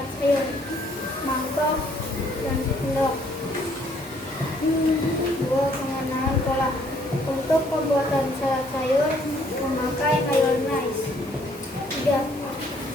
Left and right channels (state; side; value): normal; both; correlation 0.65